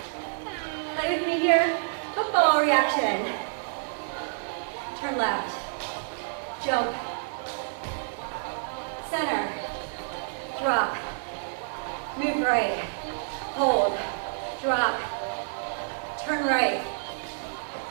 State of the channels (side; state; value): left; silent; 59 dB below the other